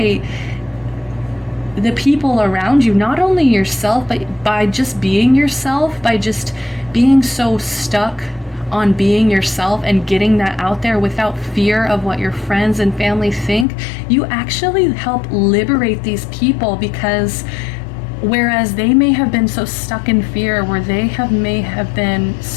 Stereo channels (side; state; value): right; drops out; at 13.7 s